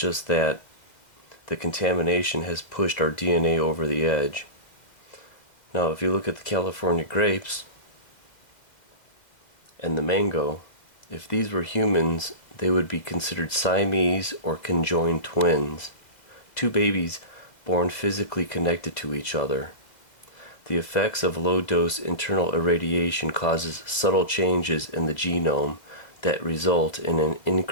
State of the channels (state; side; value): late; right; 2.1 ms